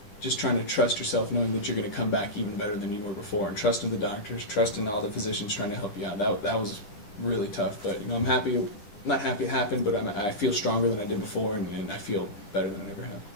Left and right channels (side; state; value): right; late; 9.9 ms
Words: just trying to trust yourself, knowing that you're going to come back even better than you were before, and trusting the doctors, trusting all the physicians trying to help you out. That was really tough. But I'm happy. Not happy it happened, but I feel stronger than I did before, and I feel better than I ever have.